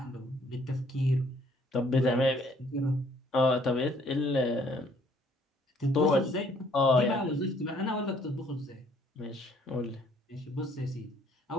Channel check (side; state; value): both; normal; correlation 0.62